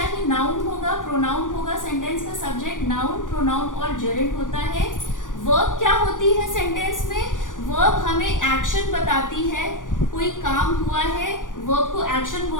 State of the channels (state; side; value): late; right; 0.88 ms